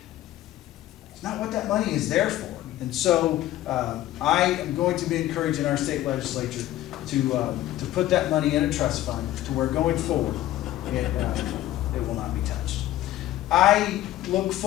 it's not what that money is there for. And so I am going to be encouraging our state legislature to put that money in a trust fund to where going forward it will not be touched. I look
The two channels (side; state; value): right; quieter; 14.3 dB